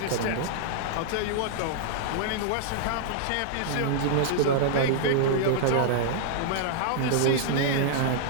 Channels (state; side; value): different; both; correlation -0.02